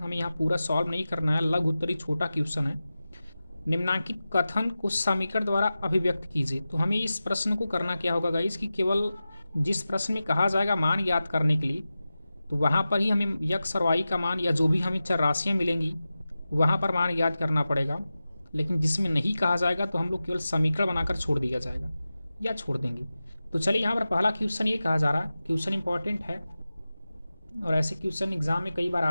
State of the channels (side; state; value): both; inverted; correlation -0.94